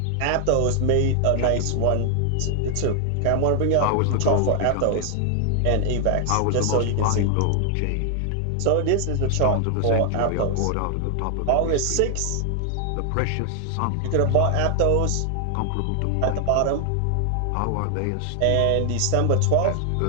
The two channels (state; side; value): different; both; correlation 0.00